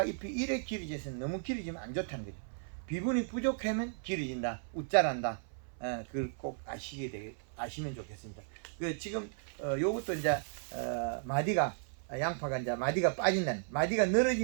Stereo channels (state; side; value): silent; left; 54 dB below the other